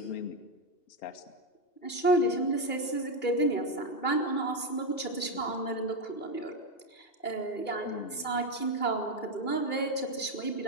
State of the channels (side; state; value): right; late; 2.3 ms